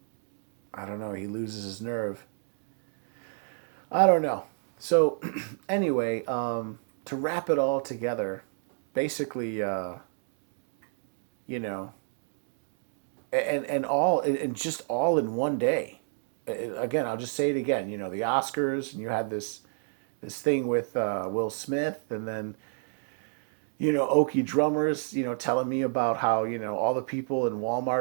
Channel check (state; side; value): silent; left; digital silence